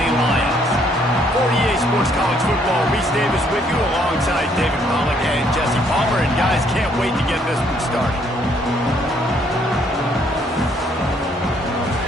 Lions. For EA Sports College Football, Reese Davis with you alongside David Pollack and Jesse Palmer. And guys, can't wait to get this one started.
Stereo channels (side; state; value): both; normal; correlation 0.67